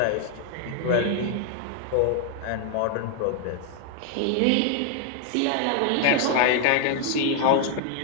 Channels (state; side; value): different; both; correlation 0.00